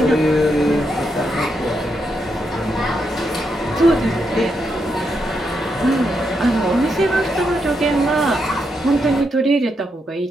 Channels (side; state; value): both; normal; correlation 0.82